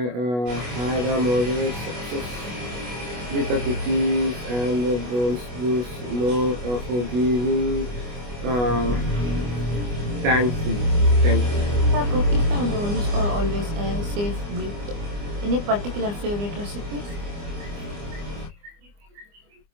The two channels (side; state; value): left; late; 25 ms